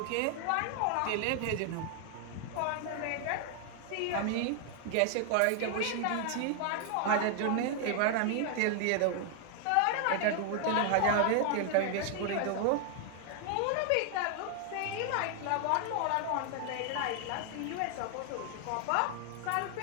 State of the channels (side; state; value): both; different; correlation 0.00